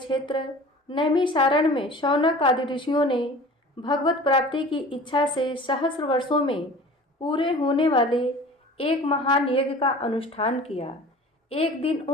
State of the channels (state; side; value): normal; both; correlation 0.42